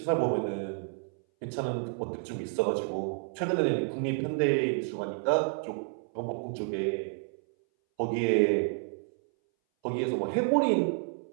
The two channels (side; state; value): left; silent; 58 dB below the other